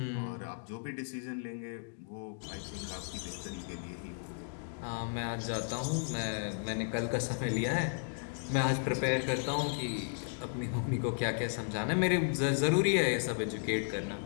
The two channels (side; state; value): right; silent; digital silence